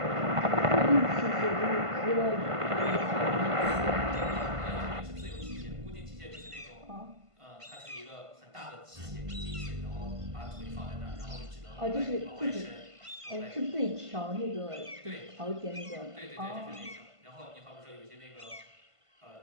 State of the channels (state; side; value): late; left; 1.5 ms